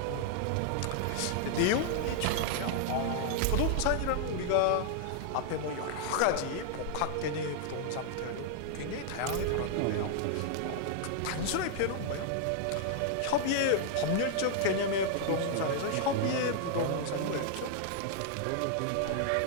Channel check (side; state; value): both; different; correlation 0.00